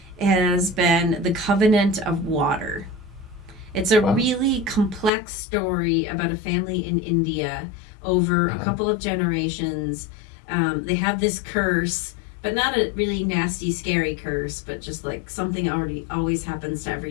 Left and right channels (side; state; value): right; drops out; at 5.1 s